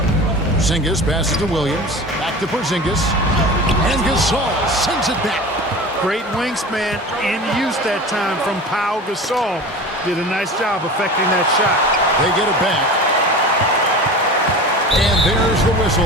Porzingis passes to Williams. Back to Porzingis. And Gasol sends it back. Great wingspan in use that time from Pau Gasol. Did a nice job affecting that shot. They get it back. And there's the whistle.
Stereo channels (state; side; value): normal; both; correlation 0.34